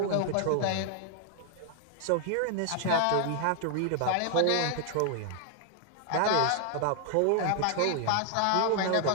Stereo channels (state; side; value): different; both; correlation 0.00